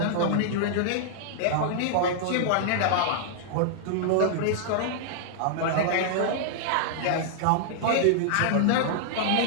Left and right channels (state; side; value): different; both; correlation -0.01